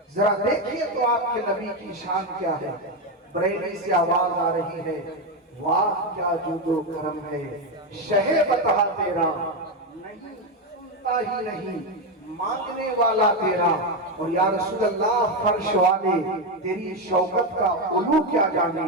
ذرا دیکھیے تو آپ کے نبی کی شان کیا ہے. بریلی سے آواز آ رہی ہے واہ کیا جود و کرم ہے شہ بتا تیرا، نہیں سنتا ہی نہیں مانگنے والا تیرا. اور یا رسول اللہ فرش والے تیری شوکت کا علو کیا جانے،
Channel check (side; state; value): both; normal; correlation 0.09